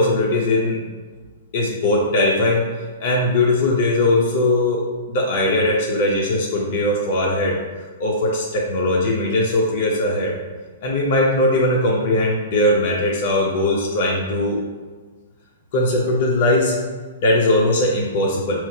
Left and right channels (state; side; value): inverted; both; correlation -0.33